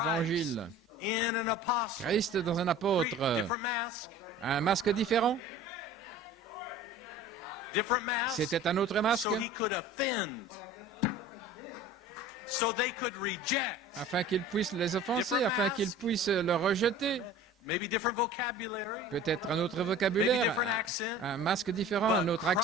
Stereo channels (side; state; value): both; normal; correlation 0.42